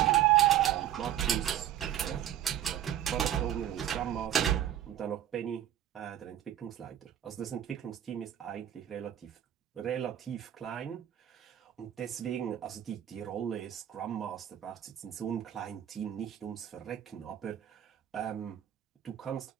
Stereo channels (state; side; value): quieter; left; 11.4 dB